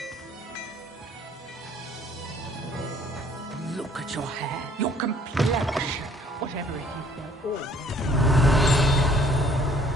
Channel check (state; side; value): normal; both; correlation 0.59